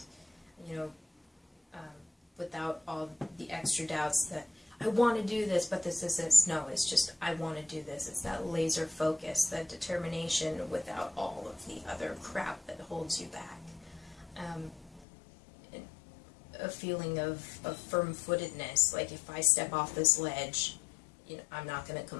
without all the extra doubts that I want to do this, but this. No, it's just I want to do this. It's that laser focus, that determination without all of the other crap that holds you back. A feeling of firm-footedness, like if I step off this ledge, I'm not going to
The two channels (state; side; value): drops out; right; at 15.1 s